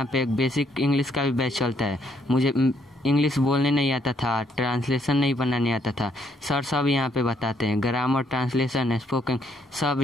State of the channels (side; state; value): both; normal; correlation 0.71